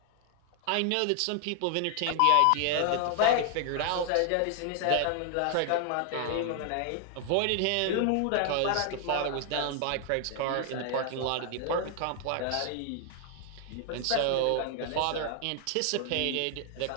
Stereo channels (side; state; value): both; different; correlation 0.00